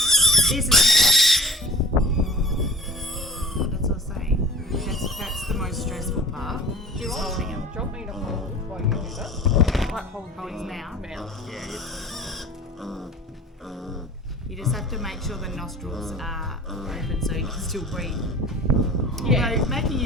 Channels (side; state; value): both; normal; correlation 0.42